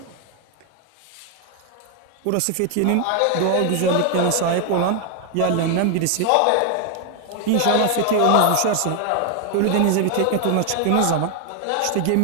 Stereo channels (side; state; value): both; different; correlation 0.00